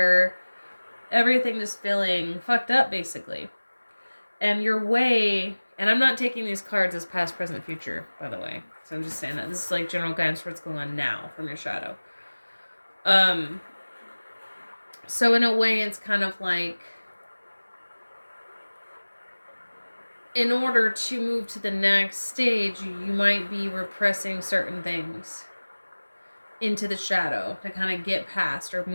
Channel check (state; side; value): inverted; both; correlation -1.00